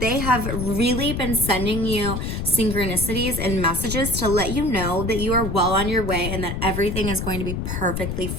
have really been sending you synchronicities and messages to let you know that you are well on your way and that everything is going to be perfectly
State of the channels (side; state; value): left; noise; rumble, 3 dB below the sound